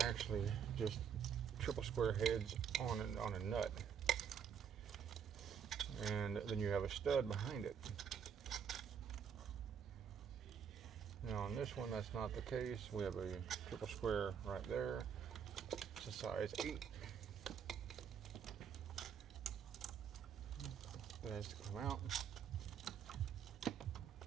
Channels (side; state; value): left; quieter; 7.7 dB